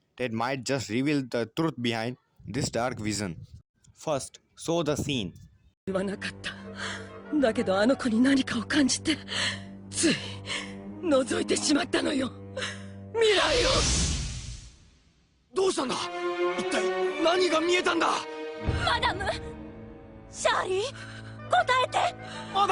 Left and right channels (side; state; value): both; identical; correlation 1.00